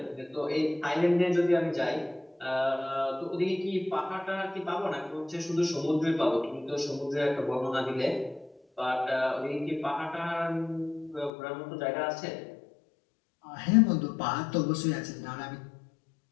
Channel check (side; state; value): right; drops out; at 11.3 s